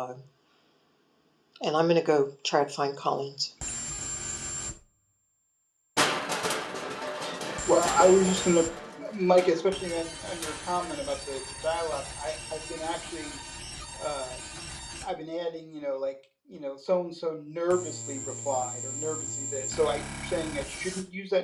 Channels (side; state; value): both; identical; correlation 1.00